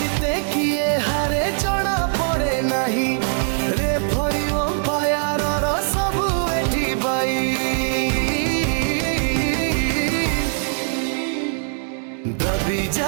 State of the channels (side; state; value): left; silent; 65 dB below the other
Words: কিয়ে হারে জনা পড়ে নাহি, রেফরি অম্পায়ারর সবু এটি বাই। দবি